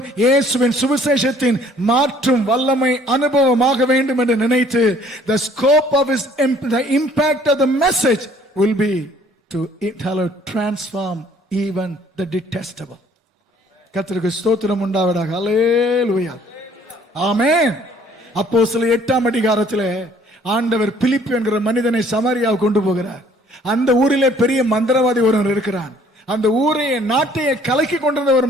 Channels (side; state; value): both; normal; correlation 0.58